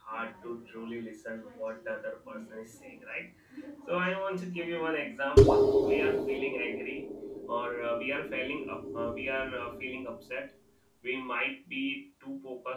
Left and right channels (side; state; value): both; identical; correlation 1.00